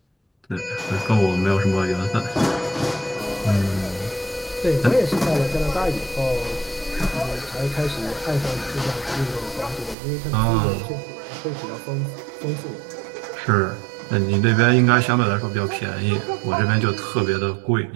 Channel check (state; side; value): drops out; left; at 10.0 s